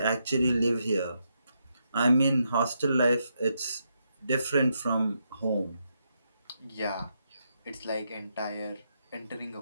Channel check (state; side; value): inverted; both; correlation -0.81